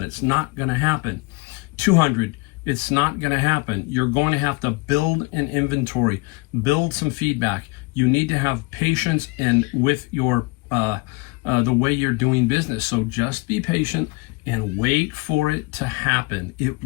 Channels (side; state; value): right; quieter; 26.5 dB